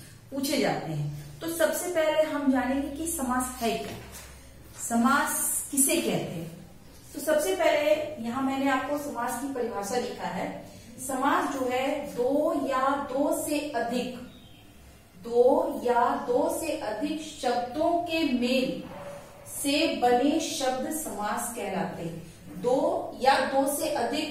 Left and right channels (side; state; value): both; identical; correlation 1.00